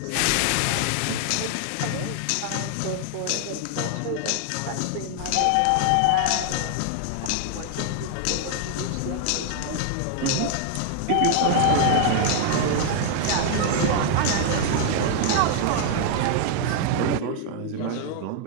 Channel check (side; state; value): both; different; correlation 0.00